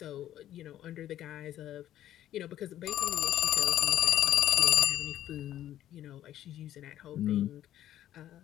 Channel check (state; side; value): quieter; right; 12.3 dB